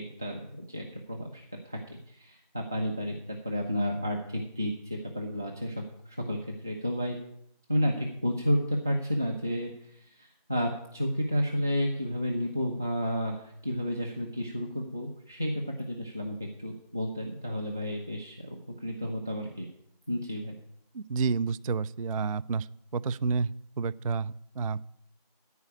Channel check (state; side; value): inverted; both; correlation -0.84